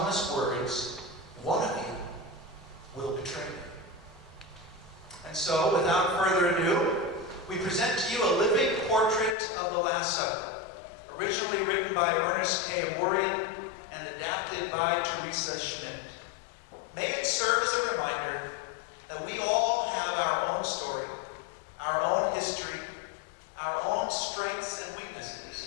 words, "One of you will betray me." And so, without further ado, we present to you a living portrait of the Last Supper, originally written by Ernest K. Aworian and adapted by Teresa Schmidt. May it serve as a reminder that we all have our own story, our own history, our own strengths and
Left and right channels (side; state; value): right; drops out; at 9.3 s